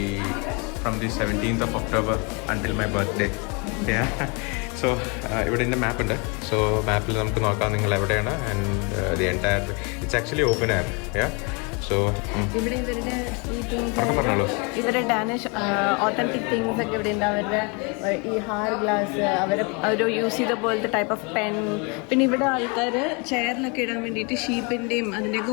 from the 17th of October until my birthday. So ഇവിടെ എൻ്റെ മാപ്പ് ഉണ്ട്. സോ മാപ്പിൽ നമുക്ക് നോക്കാം നിങ്ങൾ എവിടെയാണ്. And the entire it's actually open air. So ഇവിടെ ഇവരുടെ പറഞ്ഞോളൂ. ഇവരുടെ ഡാനിഷ് ഓത്തന്റിക് തിങ്സ് ഒക്കെ ഇവിടെ ഉണ്ട്. അവരുടെ ഈ ഹാർ ഗ്ലാസ് അവർ യൂസ് ചെയ്ത പോലത്തെ ടൈപ്പ് ഓഫ് പെൻ. പിന്നെ ഇവിടെ ആൾക്കാർ ചെയറിലൊക്കെ ഇടാൻ വേണ്ടിയിട്ട് ഷീപ്പിൻ്റെയും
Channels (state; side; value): quieter; right; 32.1 dB